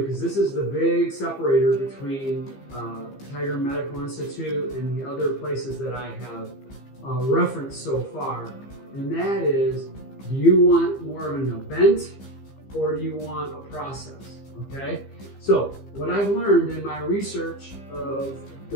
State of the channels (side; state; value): right; late; 15 ms